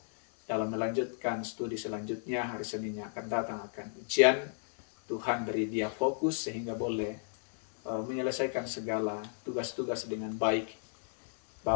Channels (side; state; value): right; silent; 56 dB below the other